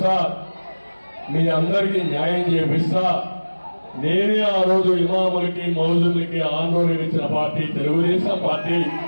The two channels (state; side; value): inverted; both; correlation -1.00